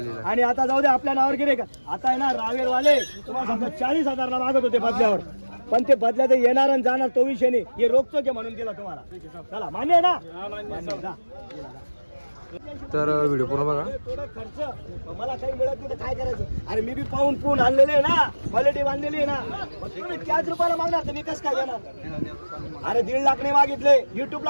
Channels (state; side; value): inverted; both; correlation -1.00